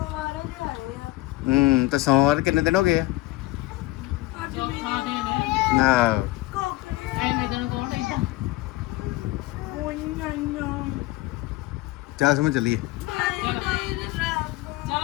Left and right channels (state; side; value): quieter; right; 18.1 dB